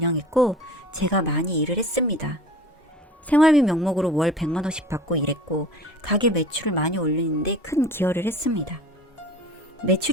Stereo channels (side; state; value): both; normal; correlation 0.41